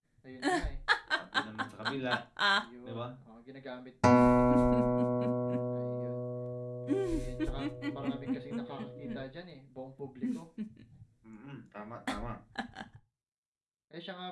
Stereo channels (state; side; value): identical; both; correlation 1.00